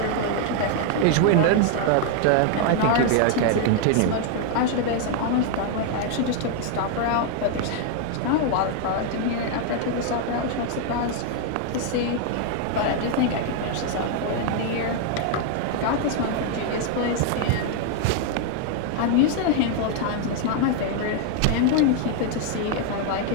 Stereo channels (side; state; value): both; different; correlation 0.00